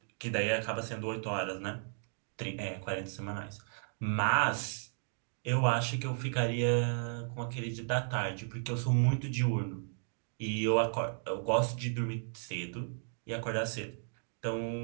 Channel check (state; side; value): silent; left; digital silence